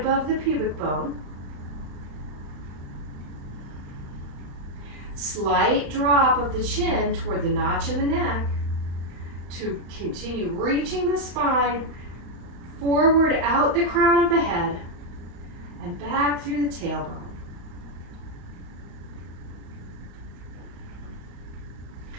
the pubic bone. Slight drop of the chin toward the notch in the neck to continue reaching the spine forward out the crown of the head and back through the tailbone.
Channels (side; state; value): left; late; 35 ms